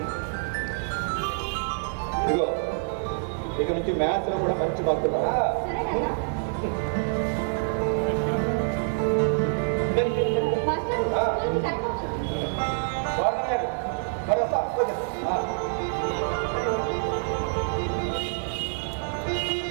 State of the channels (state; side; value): silent; left; 61 dB below the other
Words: ఇదిగో ఇక నుంచి మ్యాథ్స్ లో కూడా మంచి మార్కులు